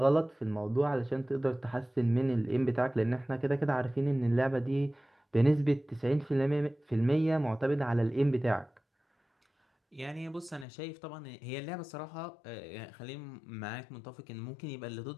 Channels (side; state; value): right; drops out; at 10.7 s